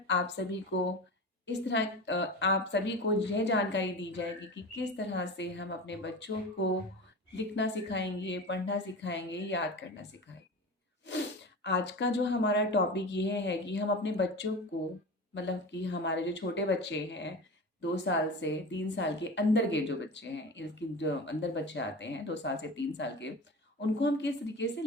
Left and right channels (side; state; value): both; normal; correlation 0.30